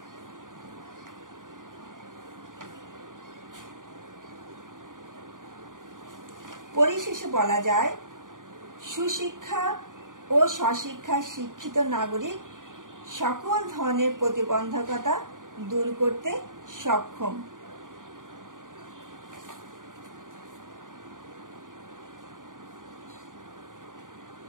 পরিশেষে বলা যায়, সুশিক্ষা ও স্বশিক্ষায় শিক্ষিত নাগরিক সকল ধরনের প্রতিবন্ধকতা দূর করতে সক্ষম।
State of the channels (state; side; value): late; left; 0.89 ms